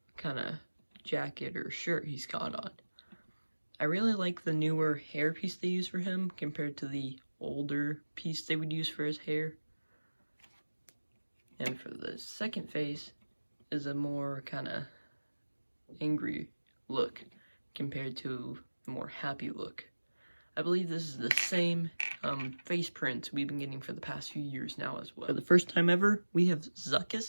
kind of jacket or shirt he's got on. I really like the newer hair piece they use for him compared to the older piece they would use for his hair. And for the second face is a more kind of angry look compared to a more happy look. I believe this is the same face print we've been getting for the past few years now as well. For the first time ever, we have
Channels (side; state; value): both; inverted; correlation -1.00